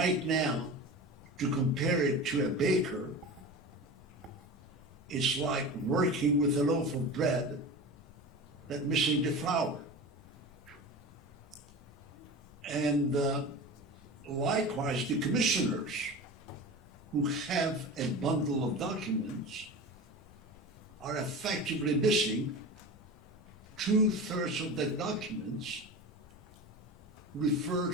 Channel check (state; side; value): normal; both; correlation 0.31